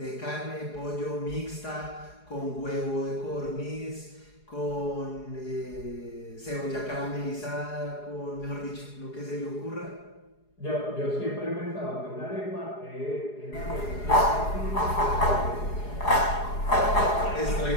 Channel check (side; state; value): right; late; 4.8 ms